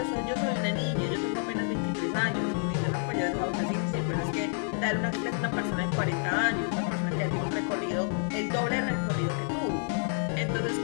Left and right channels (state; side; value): silent; right; 58 dB below the other